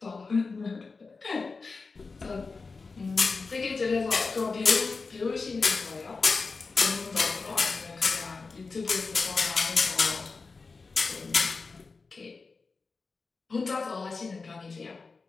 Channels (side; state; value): right; quieter; 4.3 dB